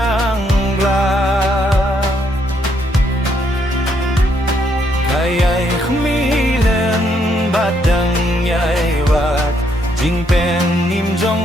Kayay khmilen badang yay wat Jing pen nim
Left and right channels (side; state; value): both; normal; correlation 0.73